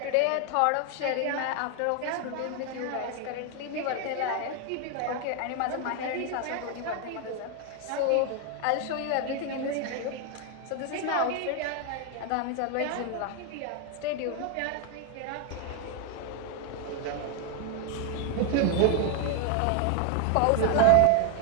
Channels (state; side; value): different; both; correlation 0.01